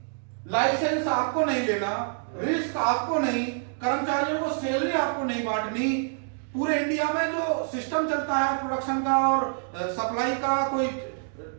लाइसेंस आपको नहीं लेना, रिस्क आपको नहीं, कर्मचारियों को सैलरी आपको नहीं बांटनी, पूरे इंडिया में जो सिस्टम चलता है प्रोडक्शन का और सप्लाई का, कोई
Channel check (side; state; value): left; silent; digital silence